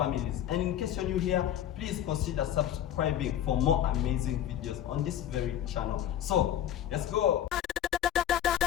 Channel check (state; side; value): quieter; right; 10.9 dB